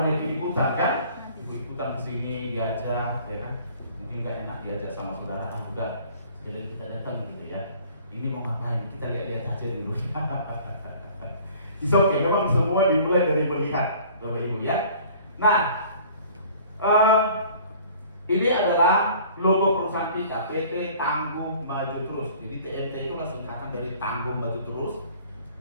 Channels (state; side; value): inverted; both; correlation -0.51